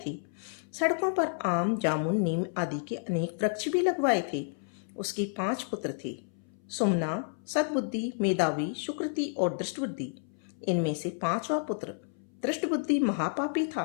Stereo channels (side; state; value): right; silent; 57 dB below the other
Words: थे। सड़कों पर आम, जामुन, नीम आदि के अनेक वृक्ष भी लगवाए थे। उसके 5 पुत्र थे: सुमना, सद्बुद्धि, मेधावी, सुकृति और दृष्टबुद्धि। इनमें से 5वां पुत्र दृष्टबुद्धि महापापी था।